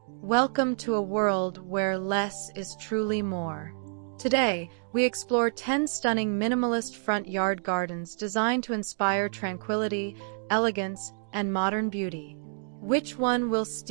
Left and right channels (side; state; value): left; silent; digital silence